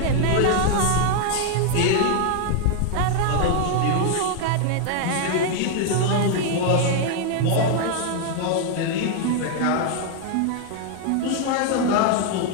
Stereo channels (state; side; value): different; both; correlation 0.00